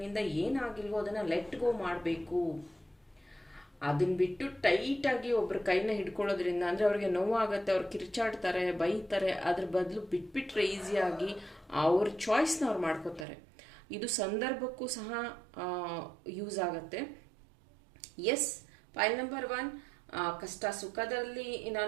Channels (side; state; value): left; drops out; at 13.2 s